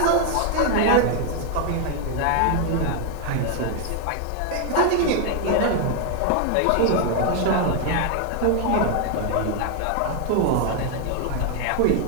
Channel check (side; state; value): both; different; correlation 0.00